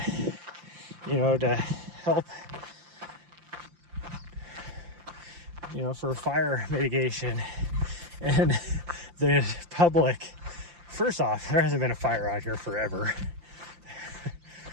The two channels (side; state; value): left; late; 5.8 ms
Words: you know, to help, you know, for fire mitigation. And the public, first off, there hasn't been a fire out here forever.